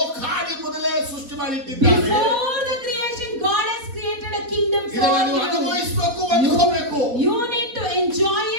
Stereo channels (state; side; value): late; left; 4.1 ms